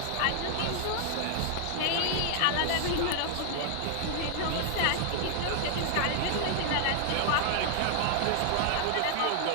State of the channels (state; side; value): different; both; correlation 0.00